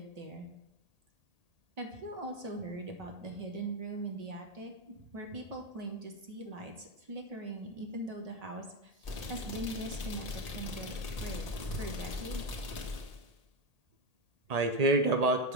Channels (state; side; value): late; left; 1.8 ms